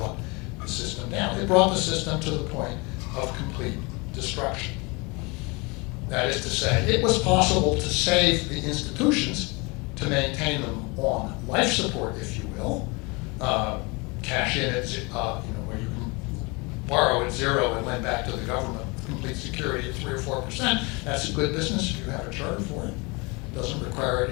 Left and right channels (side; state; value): right; quieter; 27.7 dB